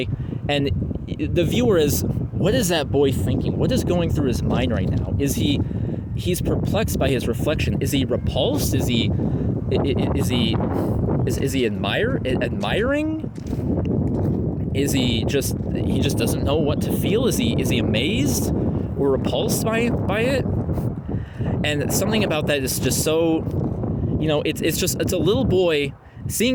and the viewer is, what is that boy thinking? What is going through his mind right now? He's perplexed by his reflection? Is he repulsed? Is he admiring? Is he just doesn't know what to feel? Is he amazed or repulsed by it? And something about that is just so, it's a little boy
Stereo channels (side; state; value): both; identical; correlation 1.00